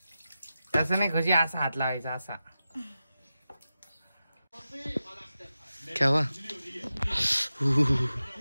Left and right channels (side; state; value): both; inverted; correlation -0.92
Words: तसं नाही खुशी, असा हात लावायचा असा. केव्हा